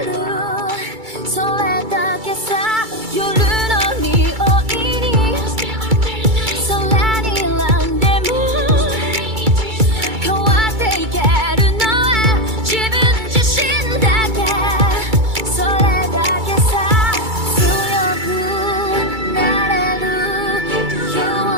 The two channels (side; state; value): left; late; 2.3 ms